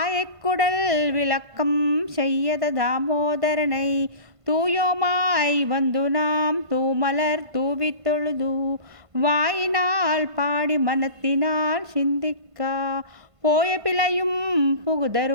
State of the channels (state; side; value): late; left; 1.5 ms